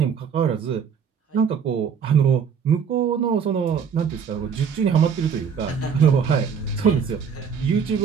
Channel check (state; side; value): quieter; left; 6.9 dB